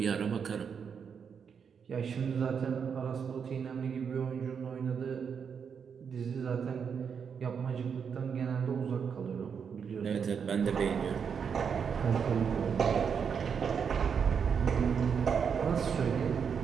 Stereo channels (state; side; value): quieter; left; 6.8 dB